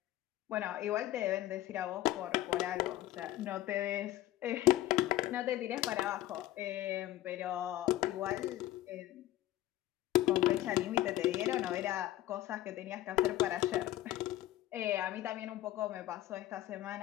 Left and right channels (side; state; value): right; quieter; 14.7 dB